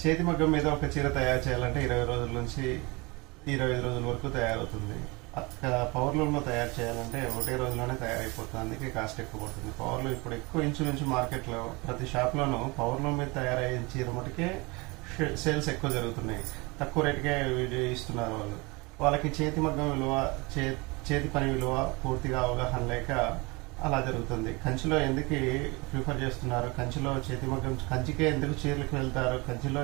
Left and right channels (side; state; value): left; quieter; 26.2 dB